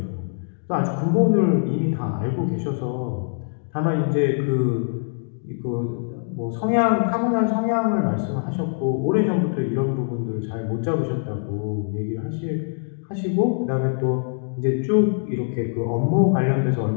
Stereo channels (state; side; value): silent; right; digital silence